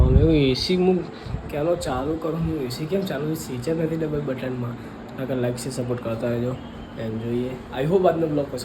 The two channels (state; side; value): identical; both; correlation 1.00